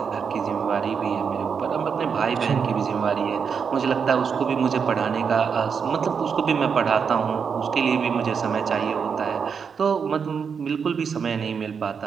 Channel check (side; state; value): left; quieter; 6.4 dB